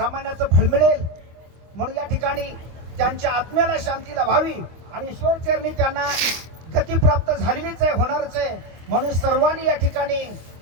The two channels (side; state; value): left; late; 25 ms